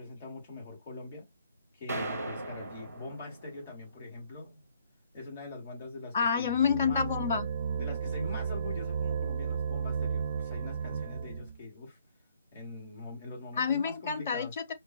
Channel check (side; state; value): both; inverted; correlation -0.65